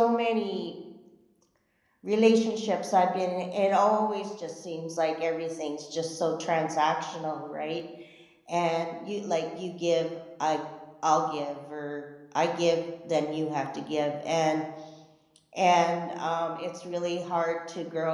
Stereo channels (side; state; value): both; identical; correlation 1.00